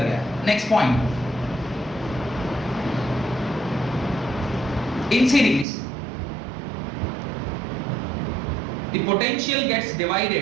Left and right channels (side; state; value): left; drops out; at 5.7 s